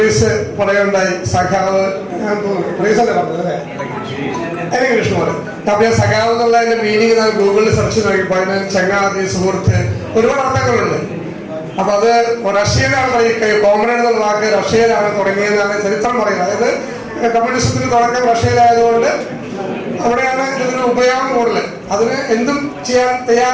പറയുകയുണ്ടായി, സഖാവ് ഒറീസല്ലേ പറഞ്ഞത് അല്ലേ, എനിക്ക് കൃഷ്ണമോഹൻ. അപ്പൊ സഖാവ് എന്നുള്ളതിന്റെ മീനിങ് ഞാൻ ഗൂഗിളിൽ സെർച്ച് നോക്കിയപ്പോൾ അതിന് ചങ്ങാതി, സുഹൃത്ത്, ഒരുപാട് അർത്ഥങ്ങളുണ്ട്. അപ്പൊ അത് റഷ്യയിലാണ് പറയുക, കോമ്രേഡ് എന്നുള്ള വാക്ക് റഷ്യയിലാണ് തുടങ്ങിയതെന്നാണ് ചരിത്രം പറയുന്നത്. അതായത് കമ്മ്യൂണിസത്തിന് തുടക്കം റഷ്യയിലായതുകൊണ്ട് അവിടെയാണ് ഇതിന് ഉപയോഗം കൂടുതൽ. അതിന് എന്തും ചെയ്യാൻ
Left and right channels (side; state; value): both; identical; correlation 1.00